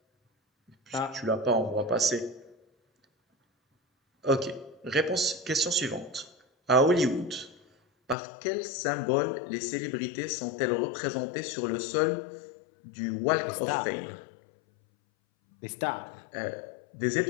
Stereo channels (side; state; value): right; drops out; at 8.2 s